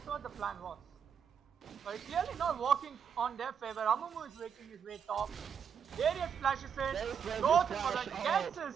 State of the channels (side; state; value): left; quieter; 7.4 dB